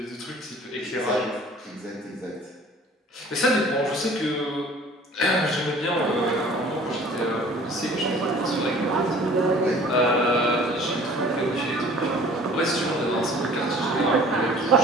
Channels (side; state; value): both; normal; correlation 0.49